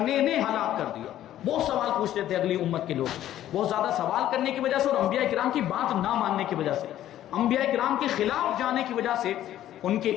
نے ہلاک کر دیا۔ بہت سوال پوچھتے تھے اگلی امت کے لوگ، بہت زیادہ سوال کرنے کی وجہ سے اور انبیاء کرام کی بات نہ ماننے کی وجہ سے، انبیاء کرام کے خلاف جانے کی وجہ سے، ان کے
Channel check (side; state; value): right; quieter; 12.5 dB